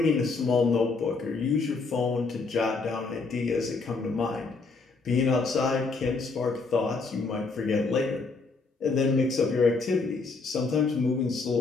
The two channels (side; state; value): right; quieter; 4.1 dB